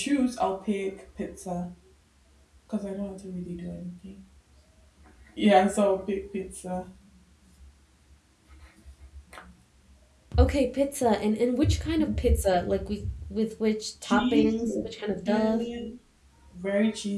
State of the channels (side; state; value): both; identical; correlation 1.00